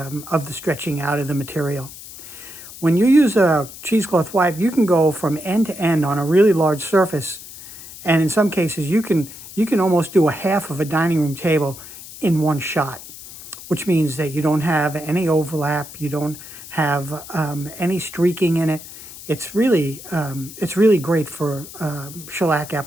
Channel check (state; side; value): noise; left; hiss, 15 dB below the sound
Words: stretching out of the material. When you use a cheesecloth wipe, you can go from end to end on a really large surface, and in some cases you can almost do a half of a dining room table in one shot, which means that you don't have any overlap, you don't have any streaking in it. It's really great for shellac